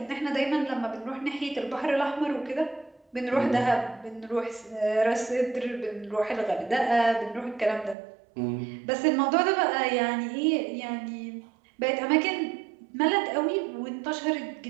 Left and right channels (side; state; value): left; drops out; at 8.0 s